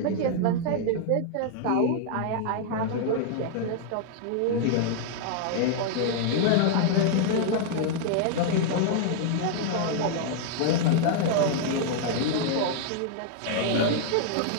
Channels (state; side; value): different; both; correlation -0.01